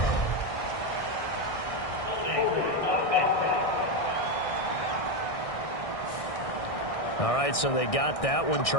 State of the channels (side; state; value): right; late; 1.6 ms